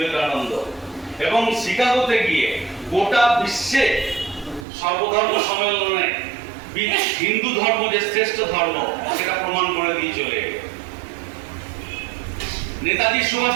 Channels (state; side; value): drops out; left; at 4.7 s